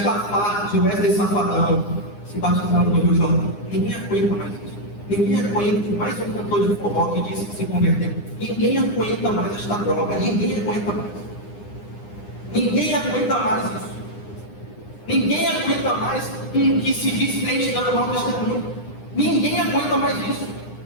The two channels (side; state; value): right; late; 9.8 ms